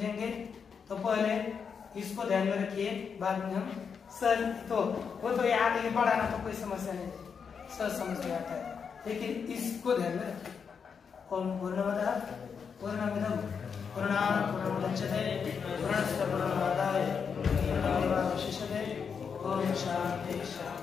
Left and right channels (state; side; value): quieter; right; 6.3 dB